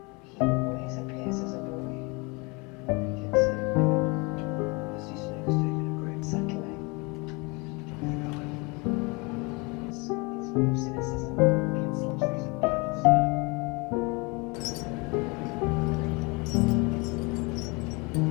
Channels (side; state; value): right; quieter; 28.3 dB